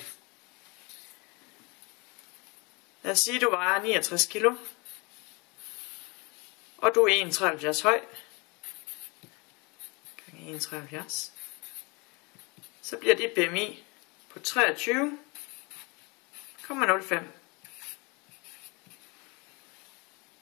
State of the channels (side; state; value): right; quieter; 28.5 dB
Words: Lad os sige, at du vejer 69 kilo, og du er 1,73 høj, gange 1,73, så bliver dit BMI på 23,05.